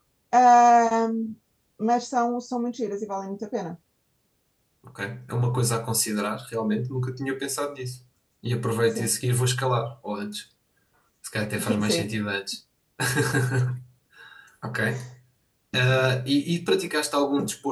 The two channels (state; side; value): identical; both; correlation 1.00